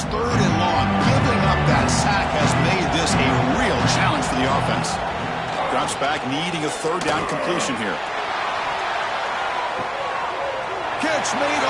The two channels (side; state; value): both; identical; correlation 1.00